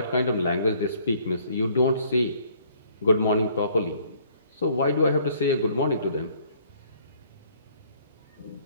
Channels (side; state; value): both; inverted; correlation -0.60